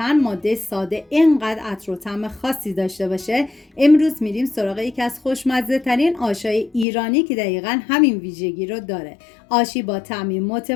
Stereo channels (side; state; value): right; drops out; at 6.9 s